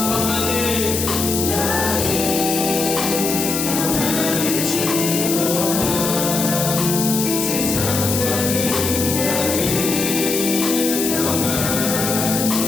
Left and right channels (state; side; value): noise; left; hiss, 2 dB below the sound